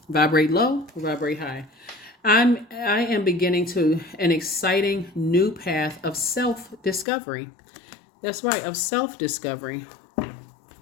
vibrate low or vibrate high? I am beginning to an exciting new path of self-discovery. That's right, of self-discovery.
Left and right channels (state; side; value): drops out; right; at 7.1 s